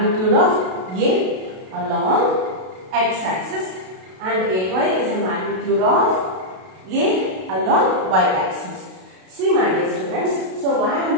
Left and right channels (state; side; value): late; left; 32 ms